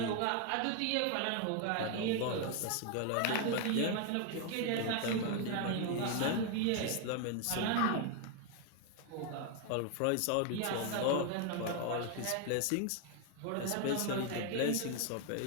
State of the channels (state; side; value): different; both; correlation 0.01